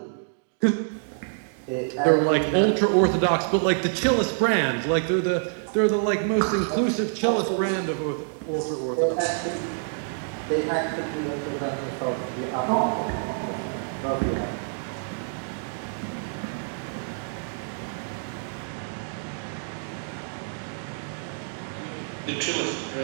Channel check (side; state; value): left; silent; digital silence